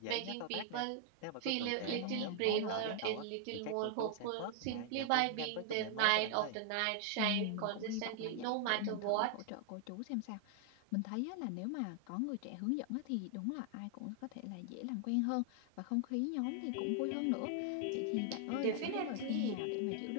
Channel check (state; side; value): different; both; correlation 0.00